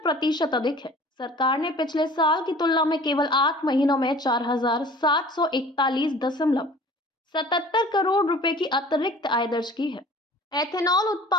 अधिक है। सरकार ने पिछले साल की तुलना में केवल 8 महीनों में 4,741.77 करोड़ रुपए की अतिरिक्त आय दर्ज की है। एथेनॉल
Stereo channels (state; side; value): normal; both; correlation 0.46